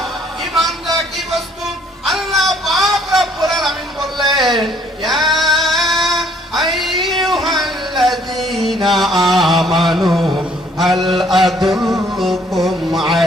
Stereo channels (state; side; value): normal; both; correlation 0.62